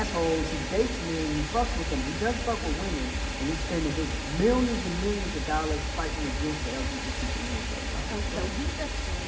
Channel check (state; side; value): identical; both; correlation 1.00